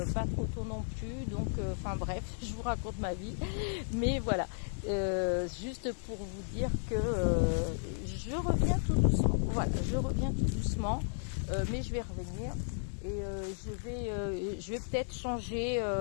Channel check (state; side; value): silent; right; digital silence